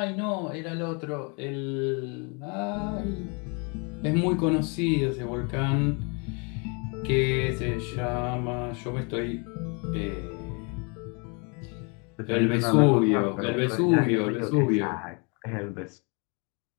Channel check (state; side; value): quieter; right; 33.6 dB